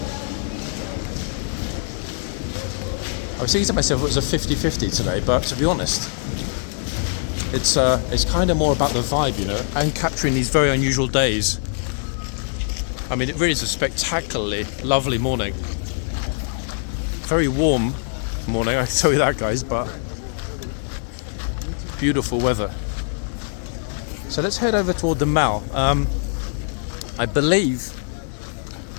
I was thinking to myself it was a 50-50 today, but to be honest, it's kind of more about the vibe, you know, and capturing these very unusual days. I mean, it really is a spectacularly lovely morning. Very warm morning, I can tell you that, guys, but beautiful weather. So let's head over toward the mall. I believe,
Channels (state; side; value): silent; right; 62 dB below the other